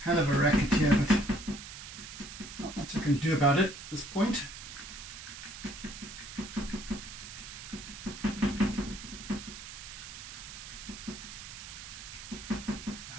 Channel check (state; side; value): noise; right; hiss, 11 dB below the sound